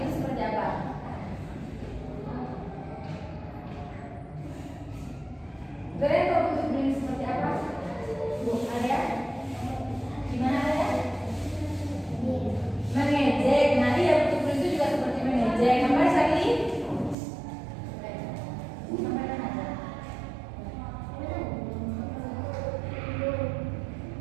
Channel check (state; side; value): drops out; left; at 17.2 s